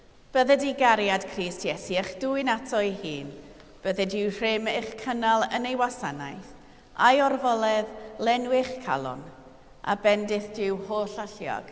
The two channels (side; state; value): both; identical; correlation 1.00